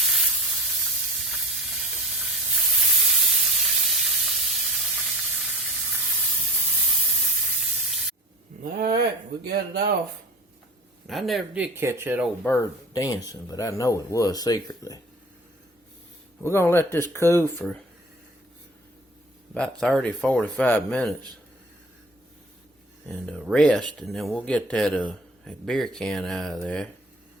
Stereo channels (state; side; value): normal; both; correlation 0.41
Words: Alright, we got it off. I never did catch that old bird dancing, but I know it was secretly. We're going to let this cool for about 30-45 minutes and rest, and then we'll get that beer can out of there.